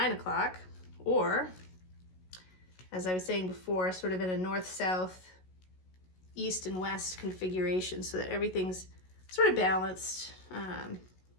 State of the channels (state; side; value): late; right; 16 ms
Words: o'clock. Or, as I was saying before, sort of in a north-south, east and west configuration so that everything's sort of balanced,